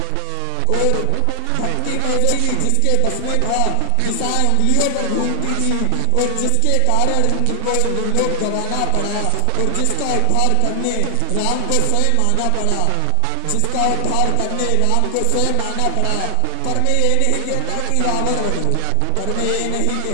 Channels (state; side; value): different; both; correlation 0.00